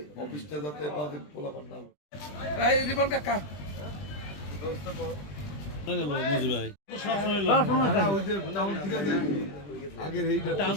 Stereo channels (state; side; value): late; right; 20 ms